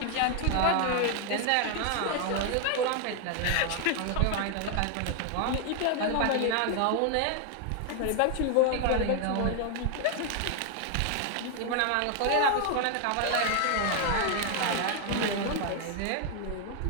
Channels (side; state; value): both; different; correlation 0.00